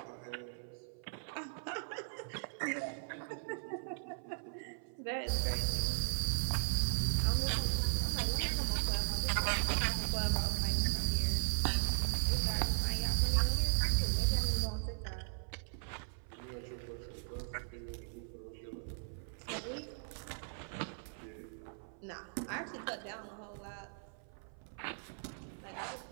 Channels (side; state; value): left; silent; 52 dB below the other